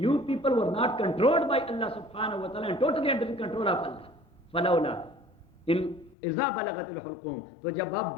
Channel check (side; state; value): right; drops out; at 6.2 s